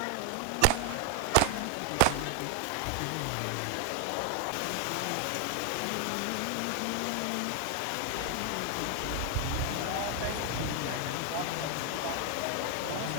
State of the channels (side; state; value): both; different; correlation 0.00